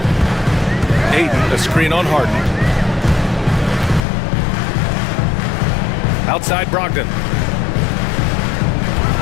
Ayton, a screen on Harden. Outside Brogdon.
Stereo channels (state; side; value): drops out; right; at 4.0 s